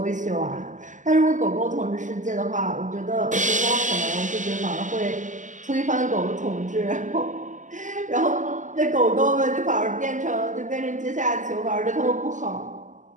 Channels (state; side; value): late; left; 0.37 ms